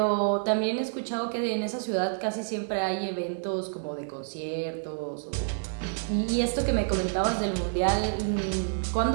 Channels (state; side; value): silent; left; digital silence